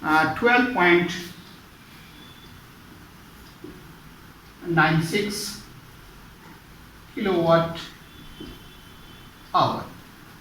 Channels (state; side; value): identical; both; correlation 1.00